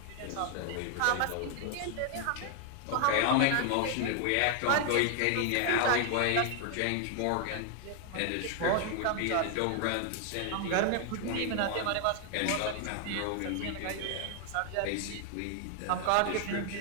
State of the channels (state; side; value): different; both; correlation 0.00